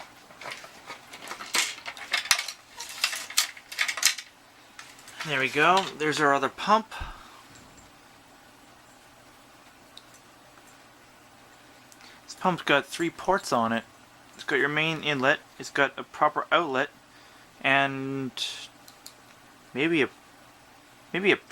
There we go. There's our other pump. This pump's got 3 ports on it. It's got your main inlet, it's got a proper outlet, and maybe a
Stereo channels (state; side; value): identical; both; correlation 1.00